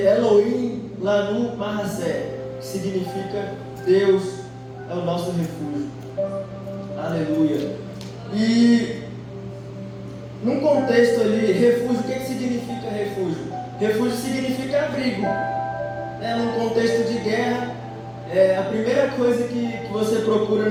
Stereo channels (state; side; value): identical; both; correlation 1.00